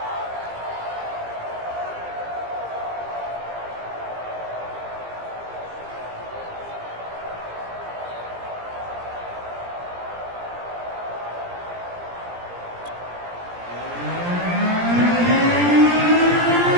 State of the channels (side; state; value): left; late; 17 ms